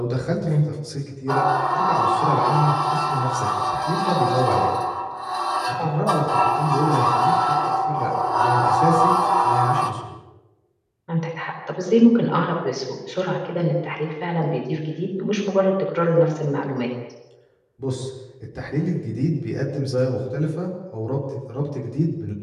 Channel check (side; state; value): both; identical; correlation 1.00